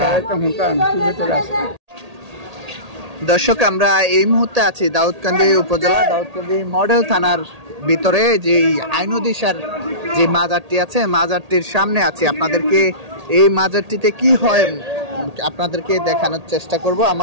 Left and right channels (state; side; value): late; left; 1.8 ms